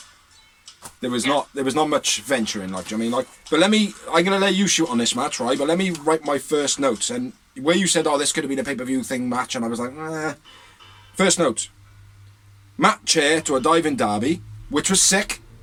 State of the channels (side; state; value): both; identical; correlation 1.00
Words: There was not much venturing, like, do you know what I mean? Like, but I'm gonna let you shoot on this match, right? But let me write my first notes. And where you said, oh, this could have been a pay-per-view thing match, and I was like, First notes. Matt chair to a diving Darby, which was sick.